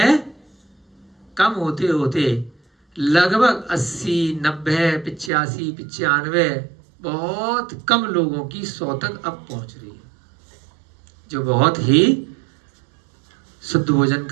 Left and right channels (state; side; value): drops out; left; at 5.3 s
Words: कम होते होते लगभग 80, 90, 85, 95 बहुत कम लोगों की 100 तक अब पहुंच रही है, जो बहुत ही शुद्ध भोजन